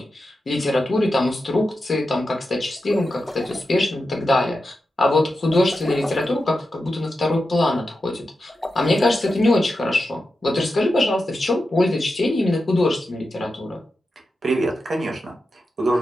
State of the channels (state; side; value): normal; both; correlation 0.90